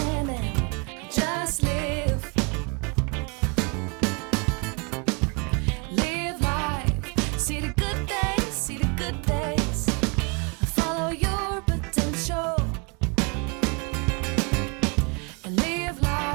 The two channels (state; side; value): quieter; left; 32.4 dB